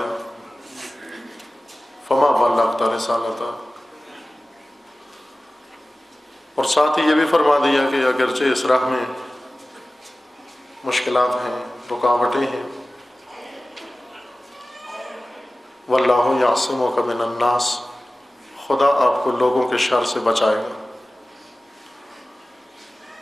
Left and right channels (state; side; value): normal; both; correlation 0.97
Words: فما بلغت رسالتہ. اور ساتھ ہی یہ بھی فرما دیا کہ اگرچہ اس راہ میں مشکلات ہیں، رکاوٹیں ہیں، واللہ یعصمک من الناس، خدا آپ کو لوگوں کے شر سے بچائے گا.